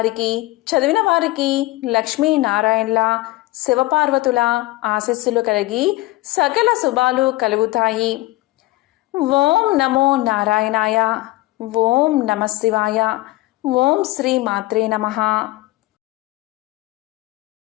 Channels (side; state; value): right; quieter; 19.3 dB